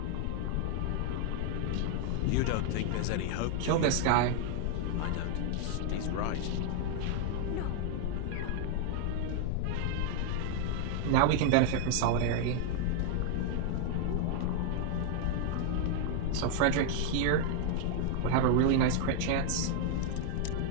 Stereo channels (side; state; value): both; different; correlation 0.00